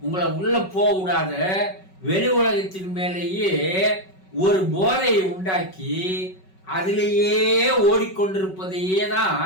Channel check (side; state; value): right; late; 5.3 ms